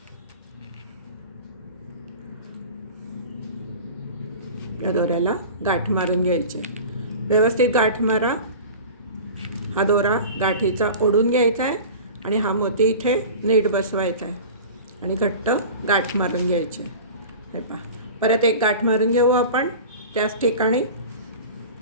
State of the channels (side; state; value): both; inverted; correlation -0.36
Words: या दोऱ्याला गाठ मारून घ्यायची. व्यवस्थित गाठ मारा. हा दोरा गाठीचा ओढून घ्यायचा आहे आणि हा मोती इथे नीट बसवायचा आहे आणि घट्ट गाठ मारून घ्यायची. हे पहा, परत एक गाठ मारून घेऊ आपण त्याच ठिकाणी.